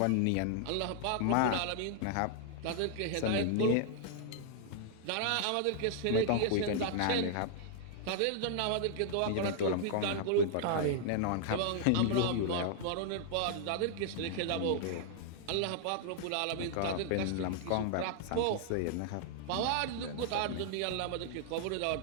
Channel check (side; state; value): both; different; correlation -0.01